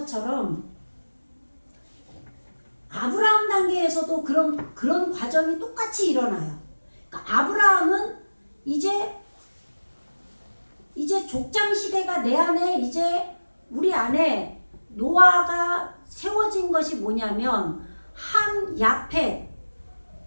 아브라함 단계에서도 그런 과정이 똑같이 일어나요. 그러니까 아브라함은 이제 족장 시대가 내 안에 이제 우리 안에 노아가 세워진 것이 뭐냐면 함 야펫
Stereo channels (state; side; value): inverted; both; correlation -1.00